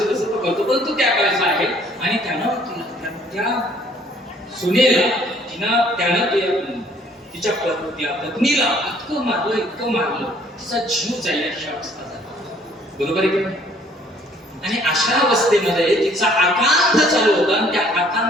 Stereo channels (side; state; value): both; normal; correlation 0.60